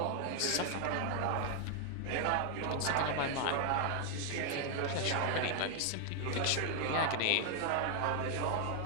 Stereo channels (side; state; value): both; different; correlation 0.00